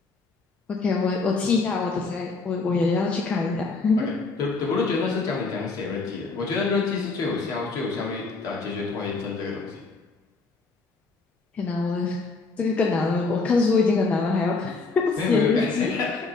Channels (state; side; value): quieter; right; 4.0 dB